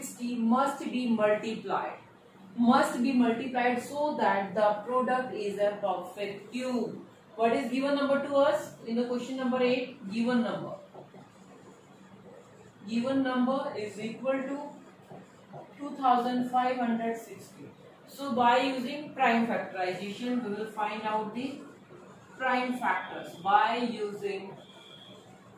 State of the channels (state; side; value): identical; both; correlation 1.00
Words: must be multiplied so that the product is a perfect cube. What is given number to us in the question number 8? Given number is equal to 2560. So by using prime factorization we will find out the prime factors by using